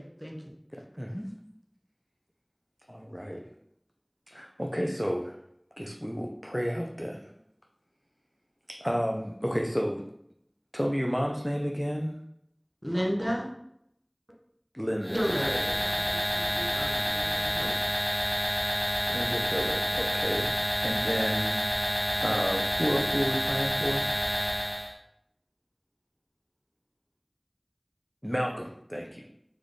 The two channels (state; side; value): identical; both; correlation 1.00